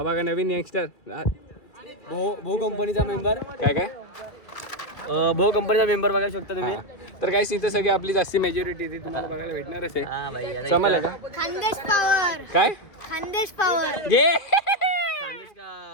बघा नवीन यंगस्टर भो कंपनीचा मेंबर. काय भो कंपनीचा मेंबर बघायला शकता तुम्ही. तर काही इथं सगळी आपली जास्ती मेजॉरिटी ती तुम्हाला बघायला भेटणारच आहे. समजलं का? खानदेश पॉवर. काय खानदेश पॉवर घे.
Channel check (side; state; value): right; late; 2.2 ms